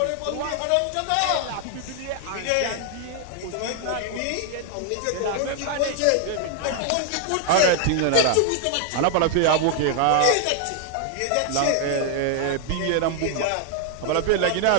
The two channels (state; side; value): different; both; correlation 0.00